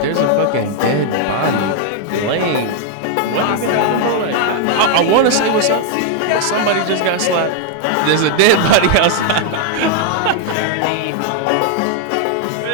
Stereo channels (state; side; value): different; both; correlation 0.00